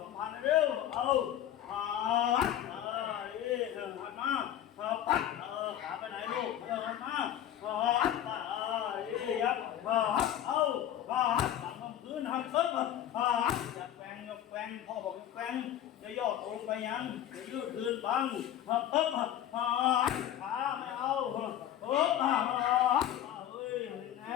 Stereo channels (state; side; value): quieter; right; 11.1 dB